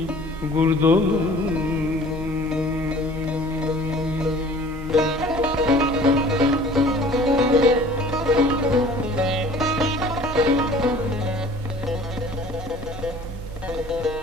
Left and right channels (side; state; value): both; normal; correlation 0.49